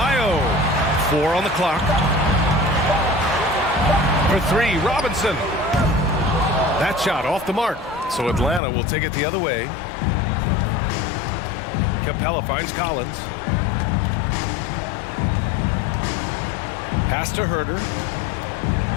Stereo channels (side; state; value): right; drops out; at 8.6 s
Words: 4 on the clock. For 3, Robinson. That shot off the mark. So Atlanta will take it the other way. Capella finds Collins. Pass to Herter.